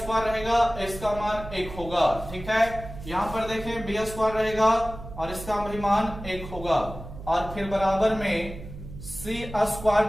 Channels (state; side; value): noise; right; hum, 12 dB below the sound